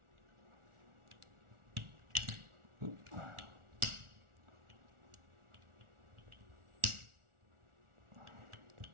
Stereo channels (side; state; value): left; late; 1.4 ms